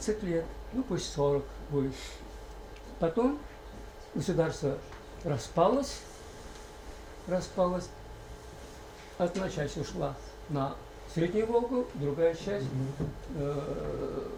лет, ну пусть 40 будет. Потом государство распалось. Одна часть ушла на Среднюю Волгу, другая часть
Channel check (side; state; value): both; identical; correlation 1.00